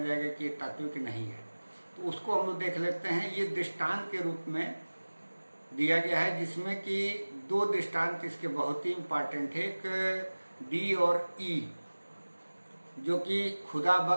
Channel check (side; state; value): both; inverted; correlation -1.00